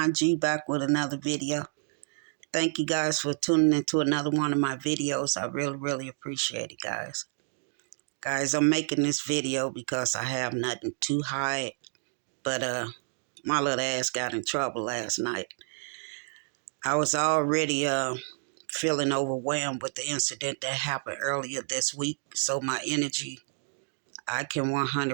G back with another video. Thank you guys for tuning into another one of my videos. I really appreciate it, guys. Guys, I'm making this video because I have nothing to hide, but my little ass got in trouble last night. I was already feeling overwhelmed with the incident that happened earlier this week, so my energy, I can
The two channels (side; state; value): left; silent; 58 dB below the other